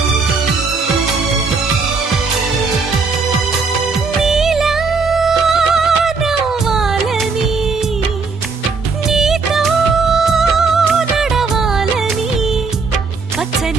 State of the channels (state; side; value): quieter; left; 4.5 dB